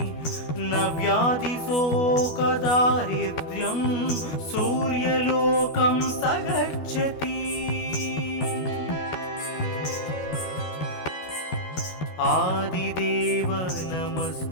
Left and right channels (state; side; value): late; right; 12 ms